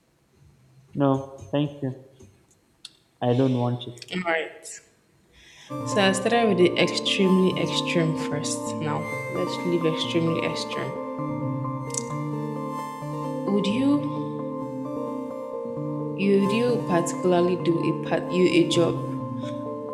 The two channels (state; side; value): identical; both; correlation 1.00